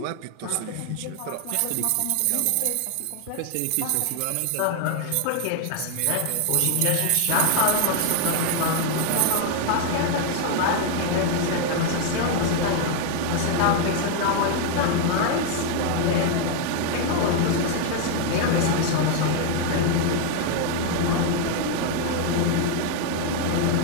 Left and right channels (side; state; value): both; different; correlation 0.00